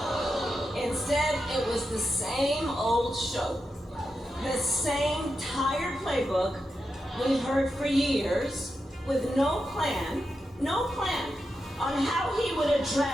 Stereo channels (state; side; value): normal; both; correlation 0.88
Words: Instead, it was the same old show, the same tired playbook we've heard for years, with no plan on how he would